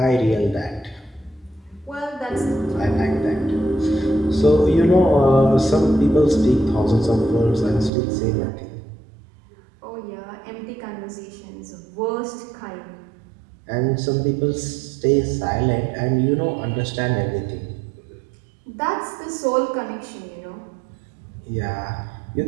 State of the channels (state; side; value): drops out; left; at 7.9 s